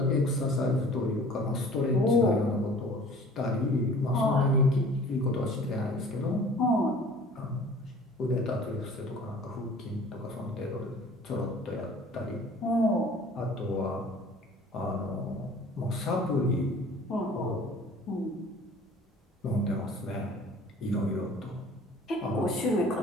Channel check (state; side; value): normal; both; correlation 0.48